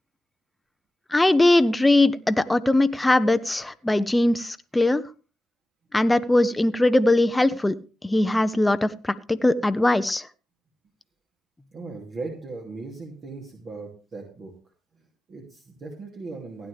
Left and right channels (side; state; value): both; normal; correlation 0.96